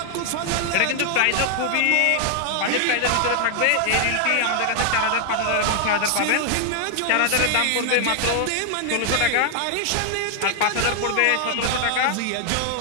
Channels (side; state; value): both; different; correlation 0.00